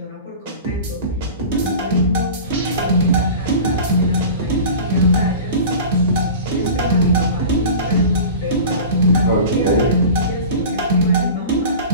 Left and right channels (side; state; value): both; inverted; correlation -0.35